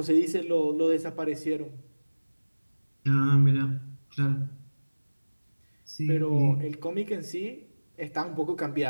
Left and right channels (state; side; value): inverted; both; correlation -1.00